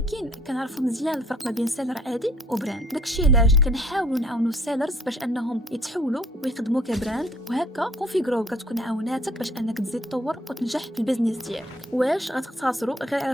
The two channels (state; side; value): normal; both; correlation 0.60